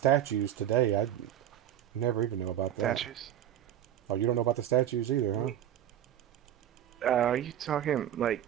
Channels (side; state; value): left; quieter; 11.0 dB